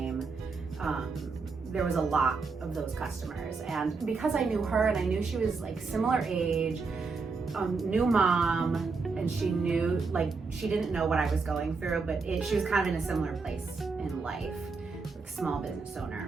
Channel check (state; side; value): quieter; left; 4.5 dB